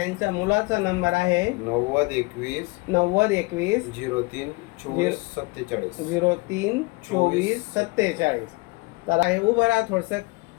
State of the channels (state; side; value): quieter; right; 25.2 dB